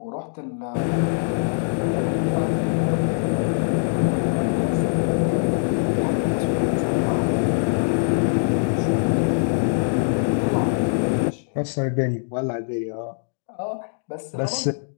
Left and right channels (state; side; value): silent; right; digital silence